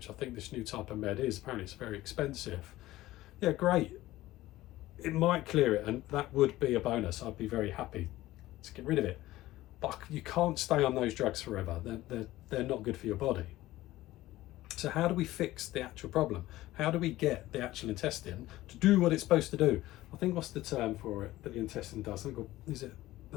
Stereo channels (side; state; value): right; quieter; 16.5 dB